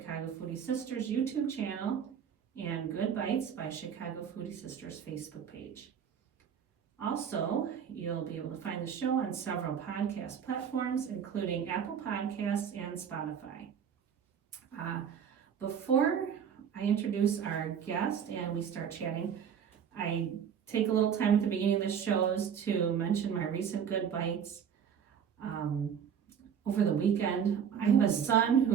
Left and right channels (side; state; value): left; quieter; 7.9 dB